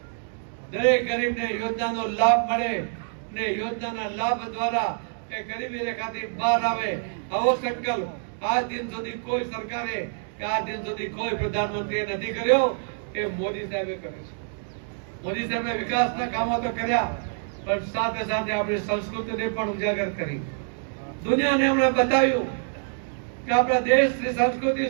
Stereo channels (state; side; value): silent; left; digital silence